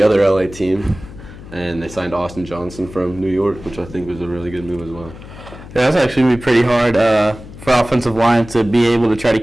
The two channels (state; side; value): noise; left; hum, 16 dB below the sound